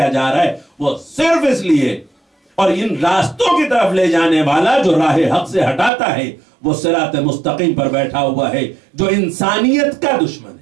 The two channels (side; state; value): left; drops out; at 5.9 s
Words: جا رہا ہے، وہ صرف اس لیے، اور ان راستوں کی طرف لے جانے والا جو راہ حق سے ہٹاتا ہے وہ صراط مستقیم پر بیٹھا ہوا ہے جو انسانیت کا دشمن